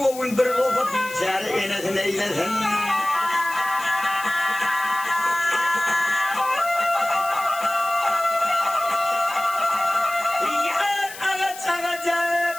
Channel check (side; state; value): left; noise; hiss, 14 dB below the sound